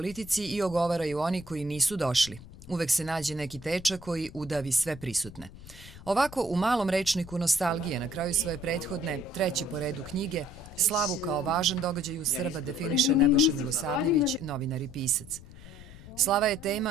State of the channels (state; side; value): noise; left; rumble, 17 dB below the sound